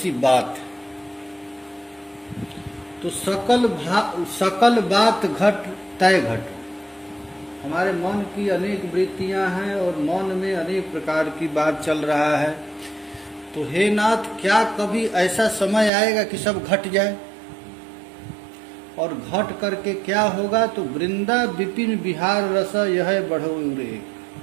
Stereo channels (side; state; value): left; drops out; at 15.9 s